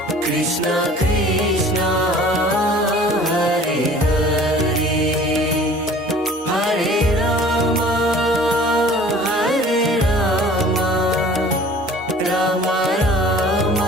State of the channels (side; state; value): both; normal; correlation 0.48